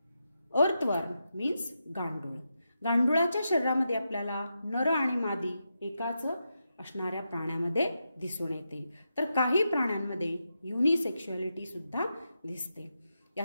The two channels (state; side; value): inverted; both; correlation -0.86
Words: earthworm means गांडूळ. गांडुळाच्या शरीरामध्ये आपल्याला नर आणि मादी एकाच असणाऱ्या प्राण्यामध्ये दिसून येते, तर काही प्राण्यांमध्ये युनिसेक्शुअलिटी सुद्धा दिसते.